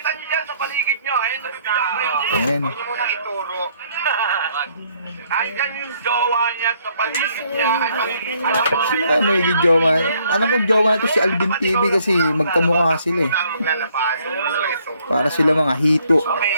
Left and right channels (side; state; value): both; inverted; correlation -0.67